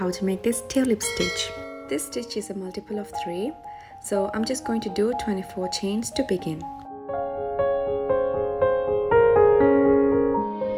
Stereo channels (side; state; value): both; identical; correlation 1.00